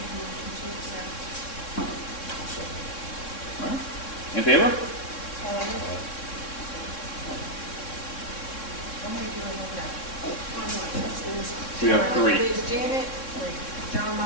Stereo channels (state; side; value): late; right; 3.6 ms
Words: a motion to accept. All right. In favor? How many do I have now? We have 3. There's Janet, John